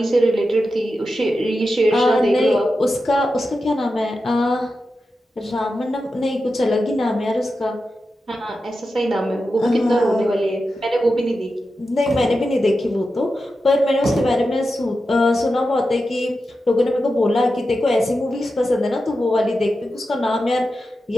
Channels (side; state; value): both; normal; correlation 0.90